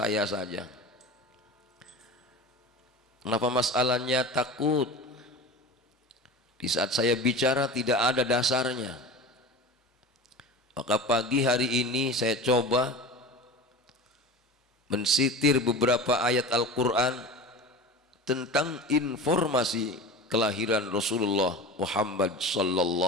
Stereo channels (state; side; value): normal; both; correlation 0.32